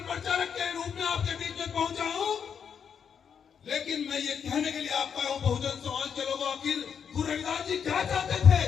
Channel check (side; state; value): right; quieter; 7.3 dB